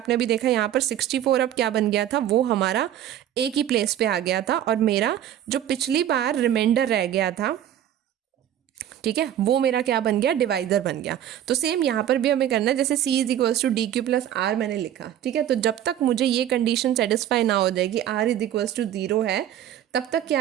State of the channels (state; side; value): quieter; left; 11.1 dB